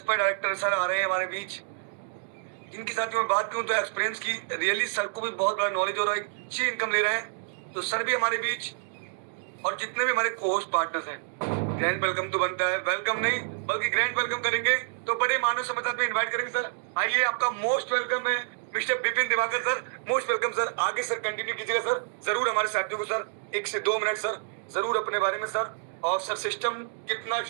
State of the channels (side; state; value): left; silent; digital silence